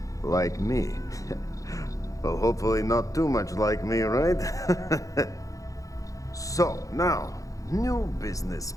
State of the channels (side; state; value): right; late; 0.16 ms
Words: Like me. Well, hopefully not too much like me, right? So, now, new business